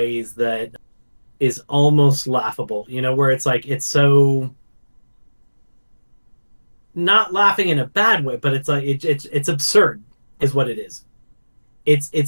that is almost laughable, where it's like it's so not laughing in a bad way, but it's like it's absurd is what it is.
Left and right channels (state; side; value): inverted; both; correlation -1.00